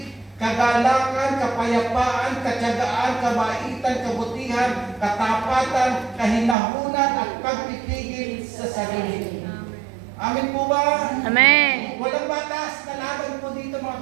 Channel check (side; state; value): left; drops out; at 6.6 s